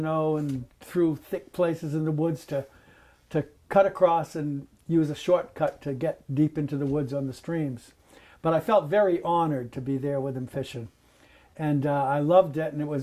know, and through thick places in the woods to cut across and use a shortcut to get deep into the woods on the streams. But I felt very honored to be there with him fishing. And I loved it, and it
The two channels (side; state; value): both; identical; correlation 1.00